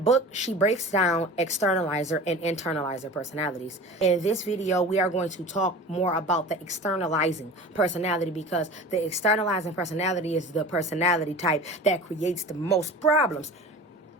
she breaks down externalizer and internalizer personalities. In this video, we are going to talk more about the externalizing personality because the externalizing personality is the personality type that creates the most problems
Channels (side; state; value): both; normal; correlation 0.36